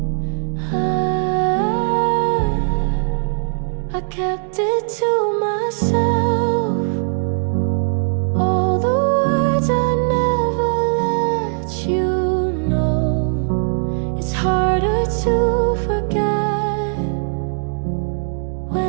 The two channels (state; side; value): silent; left; digital silence